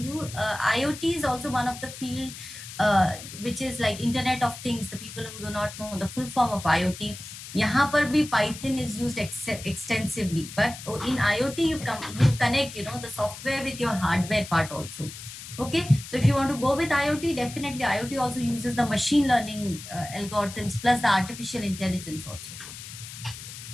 IoT is also one of the field which is like Internet of Things. The people who do not know the full form of IoT, यहाँ पर भी Python is used extensively. But in IoT, you connect, you know, the software with your hardware part also. Okay, so if you want to go with IoT, definitely IoT also uses the machine learning algorithms plus the artificial intelligence also.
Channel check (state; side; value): noise; left; hiss, 12 dB below the sound